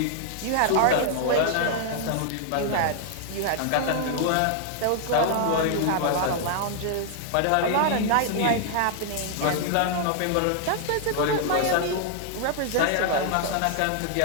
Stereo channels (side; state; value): both; different; correlation 0.00